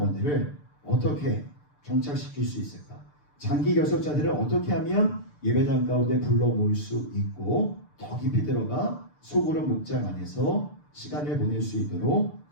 어떻게 정착시킬 수 있을까? 장기 결석자들을 어떻게 하면 예배당 가운데 불러 모을 수 있고 더 깊이 들어가 소그룹 목장 안에서 시간을 보낼 수 있도록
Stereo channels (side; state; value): right; late; 6.8 ms